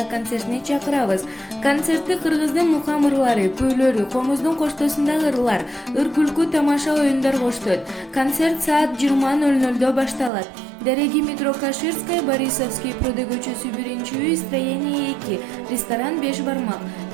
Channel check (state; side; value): drops out; left; at 10.3 s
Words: концертине чакырабыз. Концертти кыргыздын мукам ырлары, күүлөрү, комуздун коштоосундагы ырлар, ыр күлкү тамаша оюндар коштойт. Концерт саат 20:00 башталат. Дереги метро Каширская, Борисовский пруды көчөсү 1-үй, строение 2, ресторан 5 бармак.